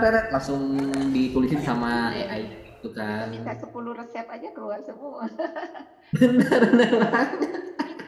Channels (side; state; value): both; identical; correlation 1.00